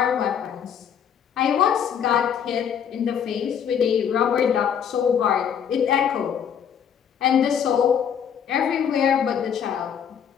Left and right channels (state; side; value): quieter; right; 8.2 dB